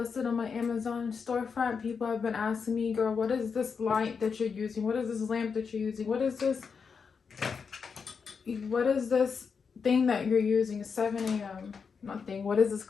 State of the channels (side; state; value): right; quieter; 5.8 dB